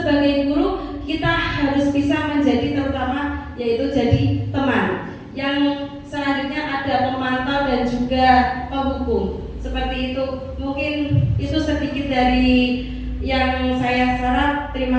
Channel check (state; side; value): identical; both; correlation 1.00